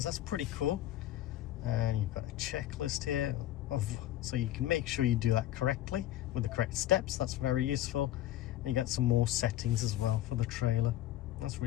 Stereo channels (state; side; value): quieter; right; 13.5 dB